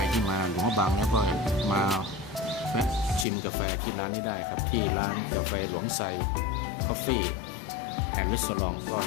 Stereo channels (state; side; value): drops out; right; at 3.2 s